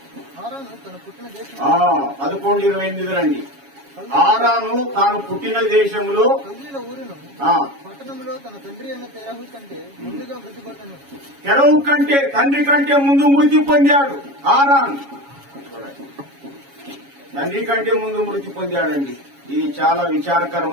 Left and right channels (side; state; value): left; late; 7.2 ms